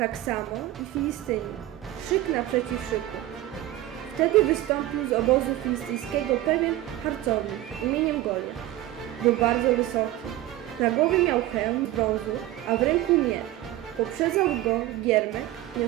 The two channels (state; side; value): quieter; left; 14.9 dB